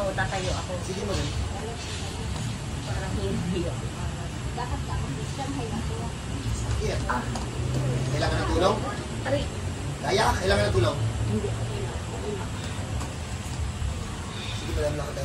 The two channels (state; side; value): identical; both; correlation 1.00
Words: tatayo ako. Sige madam. Parang hindi ako. Sige. Kailangan ng tulong? Aray. Kaya? Kailangan ng tulong? Hindi. Sige madam,